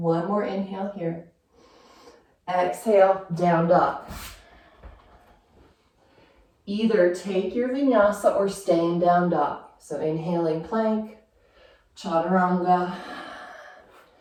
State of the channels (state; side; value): identical; both; correlation 1.00